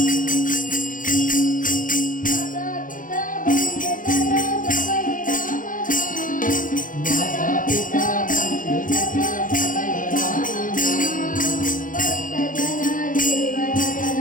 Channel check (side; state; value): right; late; 0.39 ms